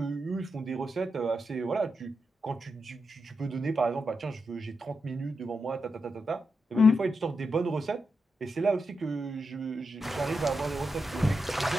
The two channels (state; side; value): normal; both; correlation 0.86